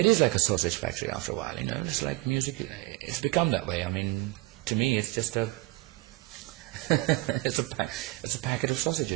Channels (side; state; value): left; quieter; 20.2 dB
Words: is like a sausage factory after a while, It's like music. It's become that way. I mean, to me, it's just it's a packet of